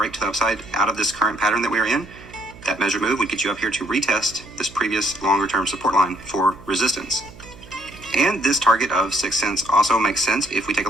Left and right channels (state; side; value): noise; right; hum, 20 dB below the sound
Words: to the upside out of this current pattern that we are in, that measure move would get you up here to retest this previous longer term support line for resistance. And this target of 6 cents also makes sense if we take a